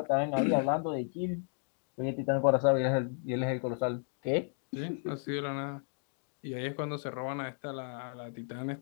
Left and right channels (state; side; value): silent; right; 55 dB below the other